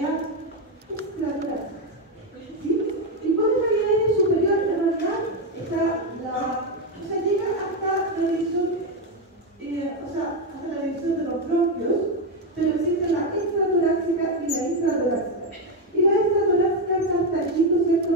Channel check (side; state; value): both; normal; correlation 0.08